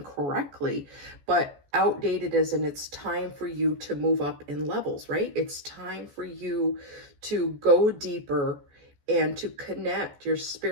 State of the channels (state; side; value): late; left; 14 ms